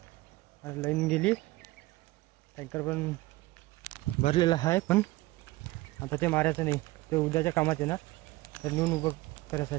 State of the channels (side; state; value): left; quieter; 19.4 dB